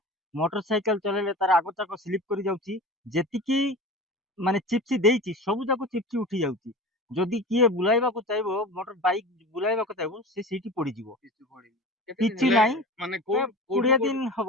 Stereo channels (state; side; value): normal; both; correlation 0.34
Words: ମୋଟରସାଇକେଲ ଚଲେଇଲେ ତାର ଆଗଚାକ ସ୍ଲିପ୍ କରି ଯାଉଛି। ଯେତିକି ମାନେ ଚିପ୍ସ ଦେଇଛି ସବୁ ଯାକ ଚିପ୍ସ ଉଠି ଯାଉଛି। ଯଦି କିଏ ବୁଲାଇବାକୁ ଚାହିଁବ ମୋଟର ବାଇକ୍ ବୁଲାଇବାକୁ ଚାହିଁବ ସେ ସେଇଠି ପଡ଼ିଯିବ। କିଛି ନାହିଁ ମାନେ 20